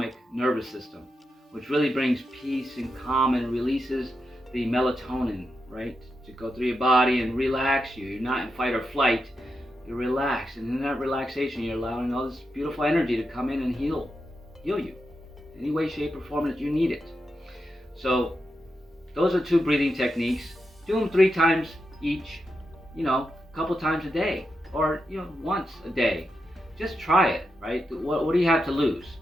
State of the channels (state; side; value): normal; both; correlation 0.86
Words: nervous system, which really brings peace and calm and releases the melatonin, right, to go through your body and relax you. You're not in fight or flight, you're relaxed, and in that relaxation you're allowing all this beautiful energy to come in and heal you any way, shape, or form that you need it. So those are 2 breathing techniques. Do them 3 times each, a couple times a day, or once a day. Just try it, right? What do you have to lose?